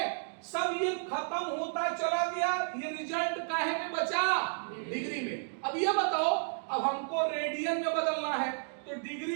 सब ये खत्म होता चला गया, ये रिजल्ट काहे में बचा, डिग्री में। अब ये बताओ, अब हमको रेडियन में बदलना है तो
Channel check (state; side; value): silent; left; digital silence